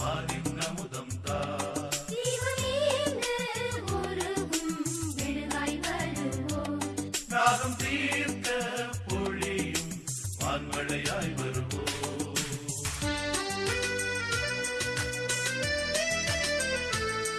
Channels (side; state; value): both; identical; correlation 1.00